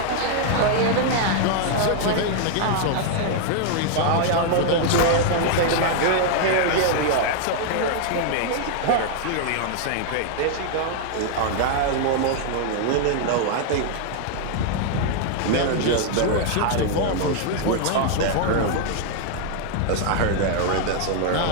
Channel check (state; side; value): different; both; correlation 0.00